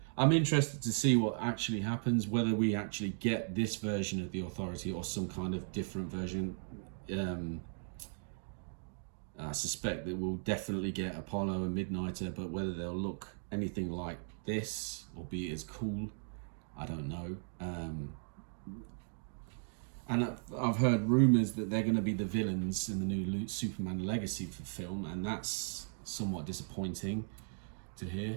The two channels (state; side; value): silent; left; digital silence